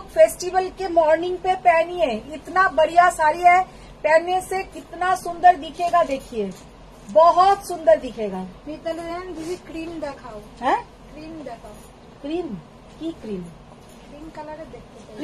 फेस्टिवल के मॉर्निंग पे पहनिए, इतना बढ़िया साड़ी है, पहनने से कितना सुंदर दिखेगा, देखिए बहुत सुंदर दिखेगा। मिताली मैम दीदी क्रीम देखाओ, है क्रीम देखाओ, ক্রিম কি ক্রিম? ক্রিম কালারে দেখতে চাই।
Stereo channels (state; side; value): identical; both; correlation 1.00